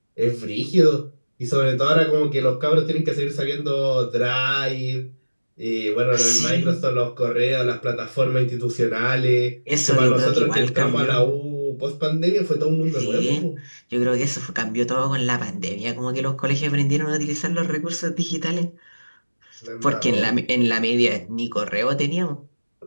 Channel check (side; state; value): both; inverted; correlation -1.00